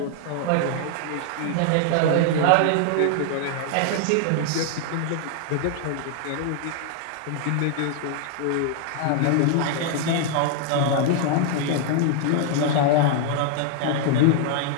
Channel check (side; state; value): both; different; correlation 0.00